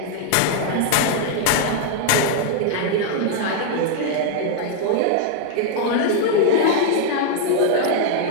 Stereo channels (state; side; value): different; both; correlation 0.00